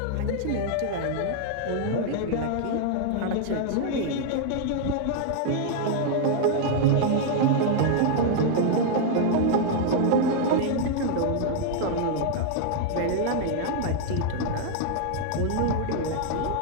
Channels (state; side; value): different; both; correlation 0.00